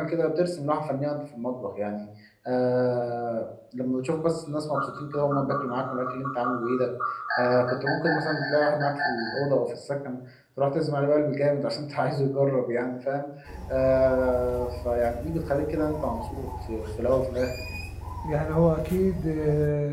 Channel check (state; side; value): identical; both; correlation 1.00